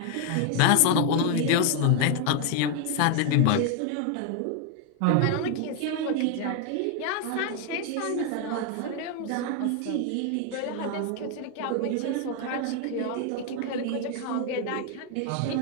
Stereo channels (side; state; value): both; different; correlation 0.00